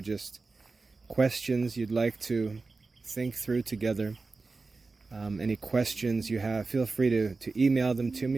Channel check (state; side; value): quieter; left; 3.9 dB